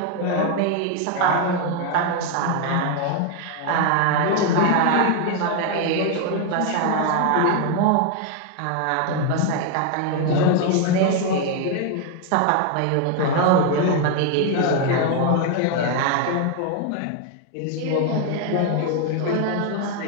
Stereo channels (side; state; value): both; different; correlation 0.01